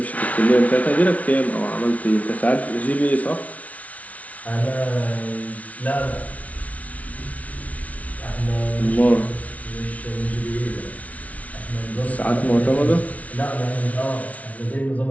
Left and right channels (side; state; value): right; late; 0.069 ms